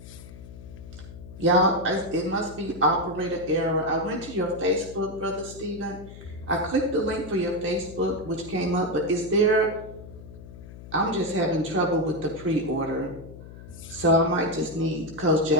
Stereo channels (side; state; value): left; noise; hum, 15 dB below the sound